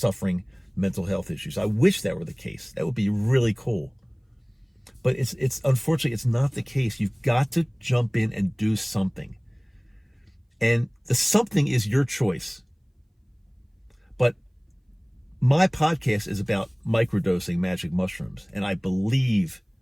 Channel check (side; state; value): both; identical; correlation 1.00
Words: mental health issues. I wish that were the case. That would be really cool. But it's unfortunately, it's not the case. You've got to jump in and do something. And the something is your choice. But my podcast is about microdosing magic mushrooms. And I believe,